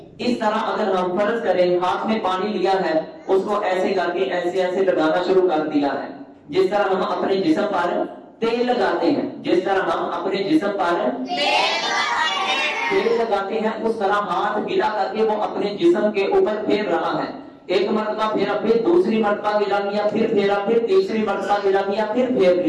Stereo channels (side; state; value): both; identical; correlation 1.00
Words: اس طرح اگر ہم فرض کریں ہاتھ میں پانی لیا ہے اس کو ایسے کر کے ایسے ایسے لگانا شروع کر دیا ہے، جس طرح ہم اپنے جسم پر تیل لگاتے ہیں، جس طرح ہم اپنے جسم پر تیل لگاتے ہیں اس طرح ہاتھ گیلا کر کے وہ اپنے جسم کے اوپر پھیر رہا ہے، ایک مرتبہ پھیرا، پھر دوسری مرتبہ گیلا کیا، پھر پھیرا، پھر تیسری مرتبہ گیلا کیا، پھر پھیر